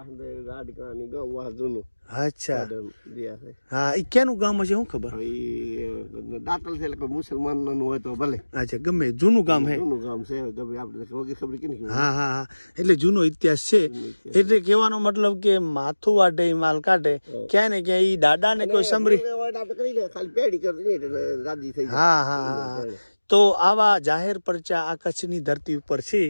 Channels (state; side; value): inverted; both; correlation -1.00